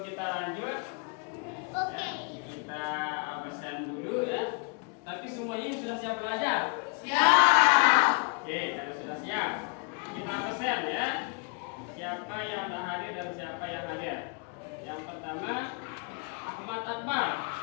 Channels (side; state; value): right; quieter; 36.7 dB